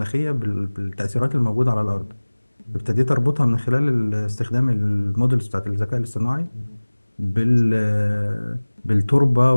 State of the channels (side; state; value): both; inverted; correlation -1.00